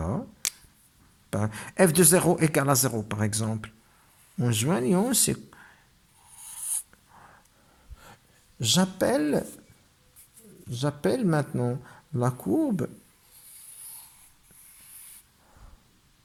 f de 0 égale à 0 par exemple, en joignant ces... J'appelle maintenant la courbe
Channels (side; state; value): both; identical; correlation 1.00